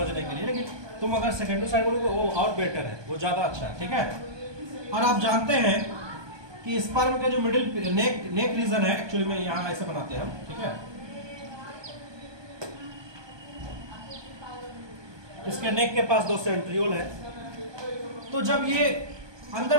के लिए। लेकिन तुम अगर सेकेंडरी साइड बोलोगे वो और बेटर है, वो ज्यादा अच्छा है। ठीक है, और आप जानते हैं कि स्पर्म के जो मिडिल नेक रीजन है, एक्चुअली में यहाँ ऐसे बनाते हैं हम। ठीक है, इसके नेक के पास 2 सेंट्रियोल है। तो जब ये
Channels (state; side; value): late; left; 1.2 ms